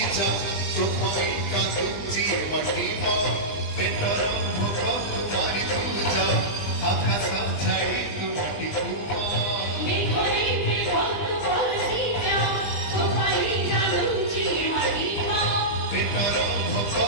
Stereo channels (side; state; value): right; late; 20 ms